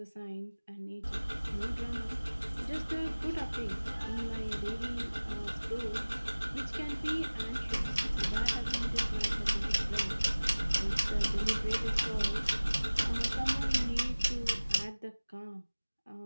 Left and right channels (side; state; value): both; inverted; correlation -1.00